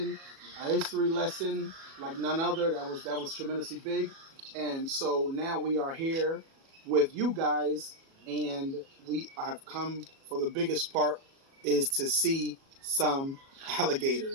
a history lesson like none other. That was tremendously big. And so now we are here with you guys, and we have come for the biggest part is to see some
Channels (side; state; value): left; late; 37 ms